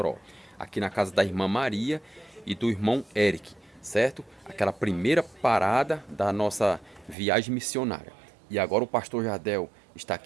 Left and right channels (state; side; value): drops out; left; at 7.2 s